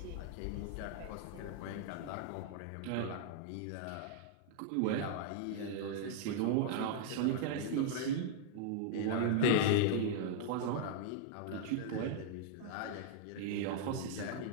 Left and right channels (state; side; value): different; both; correlation -0.01